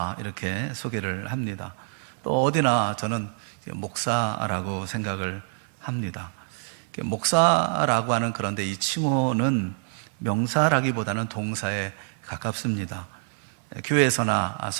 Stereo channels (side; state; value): left; silent; 61 dB below the other